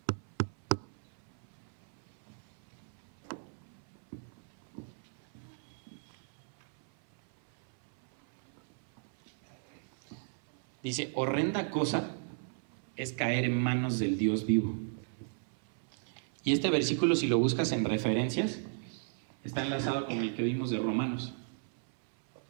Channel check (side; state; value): left; silent; 54 dB below the other